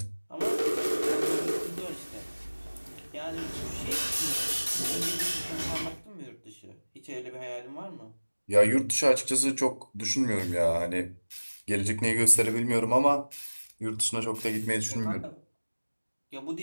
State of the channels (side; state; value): both; inverted; correlation -1.00